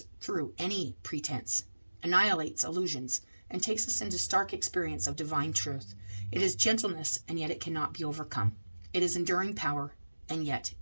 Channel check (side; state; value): both; inverted; correlation -1.00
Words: through any pretense, annihilates illusions, and takes us into stark experience of divine truth. It is gentleness, and yet it cannot be overcome. It is enduring power, and yet